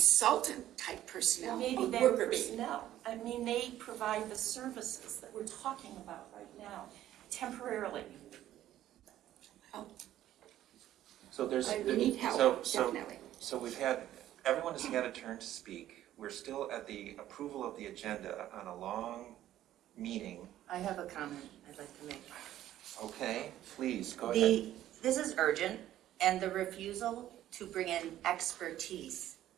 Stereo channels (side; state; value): left; quieter; 12.9 dB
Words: type Well, personnel, maybe a they're worker bee. personnel. I mean, they provide the services that we're talking about right now, temporarily. So there's. We need help, so- definitely. So we've had, everyone has had a turn to speak. We're still at the approval of the agenda on a long meeting. I have a comment I'd like to make. Okay, please, go ahead. This is urgent, and the refusal to bring in expertise